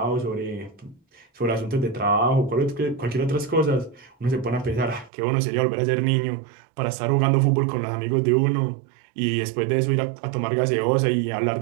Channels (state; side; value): drops out; left; at 5.1 s